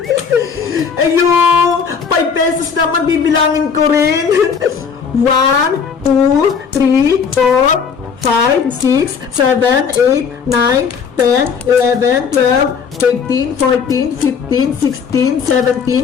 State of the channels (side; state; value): right; quieter; 6.3 dB